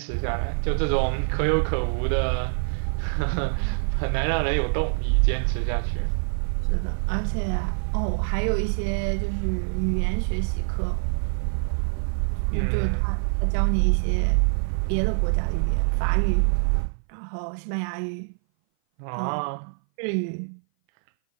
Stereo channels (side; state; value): left; silent; 58 dB below the other